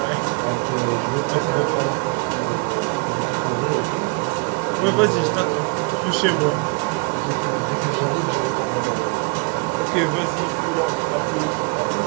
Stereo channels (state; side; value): quieter; left; 32.1 dB